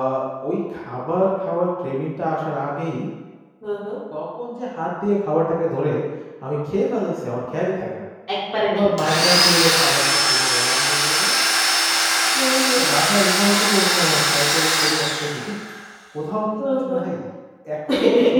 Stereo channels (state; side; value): identical; both; correlation 1.00